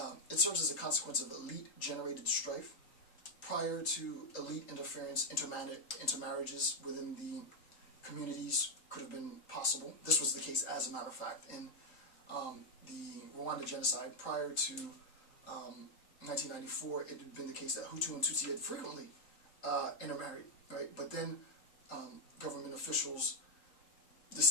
it serves as a consequence of elite-generated strife. Prior to elite interference, intermarriages within the communities could have been possible. This was the case, as a matter of fact, in the Rwanda genocide. Prior to 1994, it had been the case that Hutu and Tutsi had frequently intermarried, right? But then government officials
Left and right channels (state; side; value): late; right; 3.7 ms